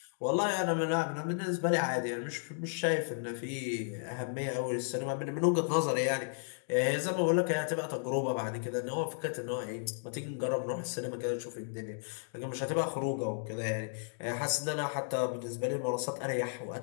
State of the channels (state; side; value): silent; right; digital silence